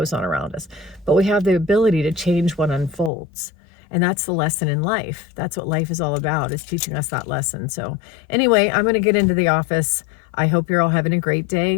on around us, but we have the ability to change what unfolds. And that's the lesson in life. That's what life is all about, is teaching us that lesson. So anyway, I'm going to get into the office. I hope you're all having a great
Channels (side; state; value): right; drops out; at 3.1 s